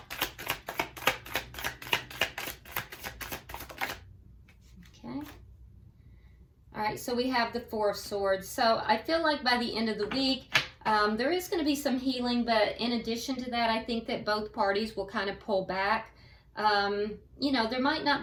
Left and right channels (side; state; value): both; identical; correlation 1.00